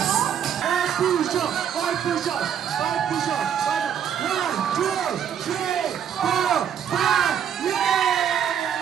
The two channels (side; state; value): left; quieter; 8.7 dB